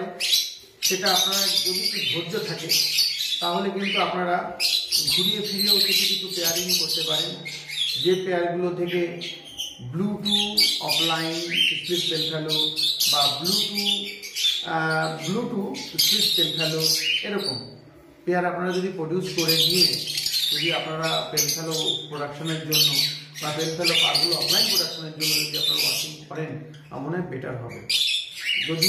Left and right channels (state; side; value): identical; both; correlation 1.00